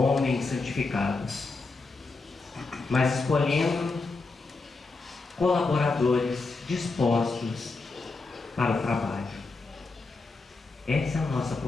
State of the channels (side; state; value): right; quieter; 3.7 dB